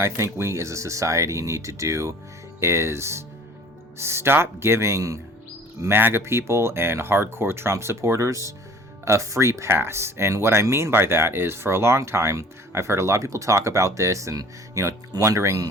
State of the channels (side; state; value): both; normal; correlation 0.48